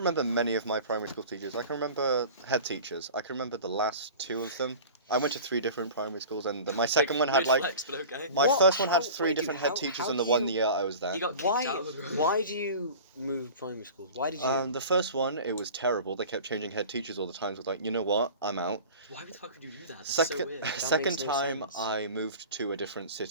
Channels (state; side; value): inverted; both; correlation -0.39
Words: many of my primary school teachers. I can remember head teachers. I can remember the last 2 of them. I went to 3 different primary schools, and my second one had Weird like flex, but okay. my What? first one had How- 3 wait, different dude, head teachers how in the do 1 you- year I was there. He got kicked Why? out of the room. Why do you move primary schools? Why did you? The first one, it was terrible. They kept changing head teachers all the time. So I was like, you know what? I'm out. Why the fuck would you do that? That's Second, so weird. second makes no time, sense. I moved to a different